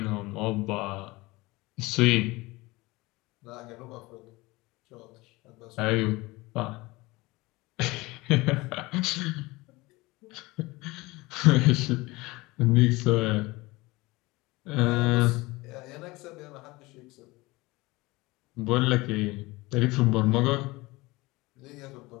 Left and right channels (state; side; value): quieter; right; 21.9 dB